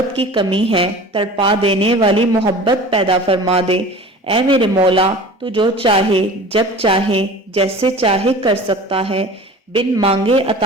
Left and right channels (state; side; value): normal; both; correlation 0.39